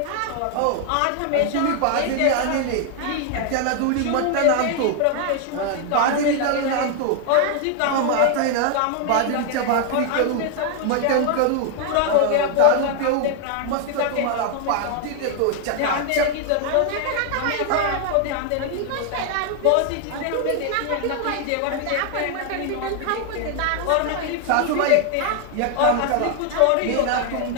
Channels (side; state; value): both; different; correlation 0.00